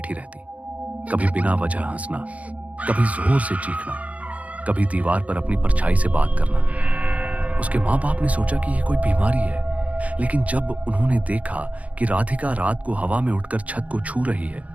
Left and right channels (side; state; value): left; late; 0.068 ms